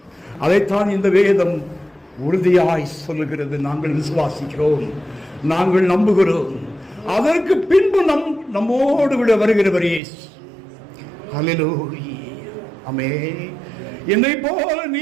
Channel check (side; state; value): left; drops out; at 10.0 s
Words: அதைத்தான் இந்த வேதம் உறுதியாய் சொல்லுகிறது. நாங்கள் விசுவாசிக்கிறோம், நாங்கள் நம்புகிறோம். அதற்கு பின்பு நம்மோடு கூட வருகிறவர் இயேசு. ஹல்லேலூயா. ஆமென். என்னை போல